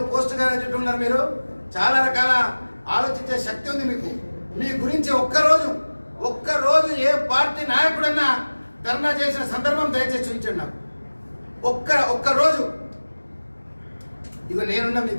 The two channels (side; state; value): both; inverted; correlation -1.00